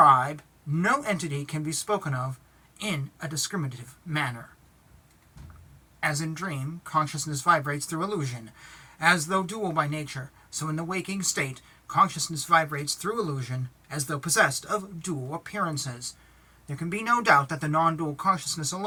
no entity can be spoken of in a discriminative manner. As in dream, consciousness vibrates through illusion, as though dual by nature, so in the waking state, consciousness vibrates through illusion, as though possessed of dual appearances. There can be no doubt that the non-dual consciousness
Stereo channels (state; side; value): identical; both; correlation 1.00